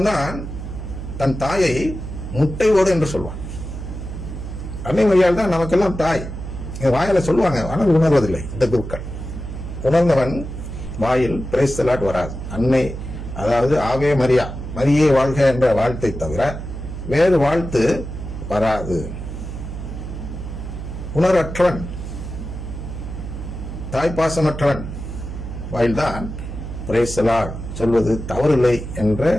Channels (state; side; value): noise; right; hum, 8 dB below the sound